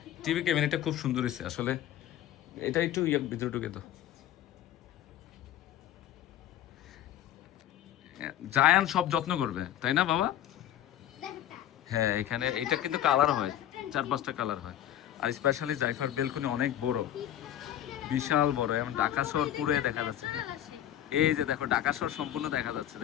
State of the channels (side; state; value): right; quieter; 11.9 dB